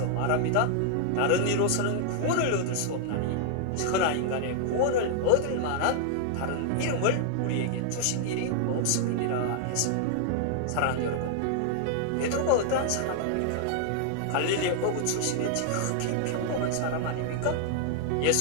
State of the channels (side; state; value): both; different; correlation -0.01